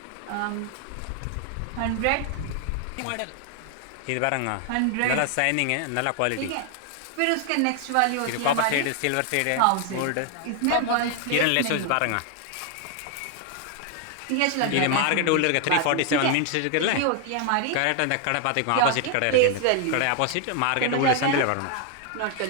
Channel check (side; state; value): both; different; correlation 0.00